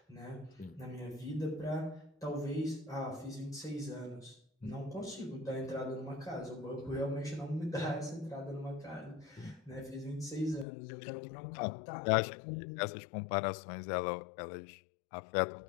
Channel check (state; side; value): drops out; right; at 10.7 s